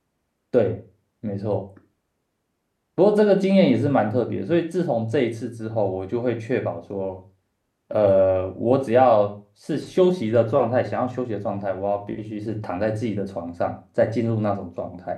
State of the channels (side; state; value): both; identical; correlation 1.00